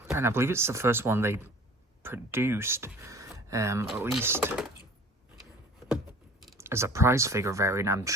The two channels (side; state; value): both; normal; correlation 0.46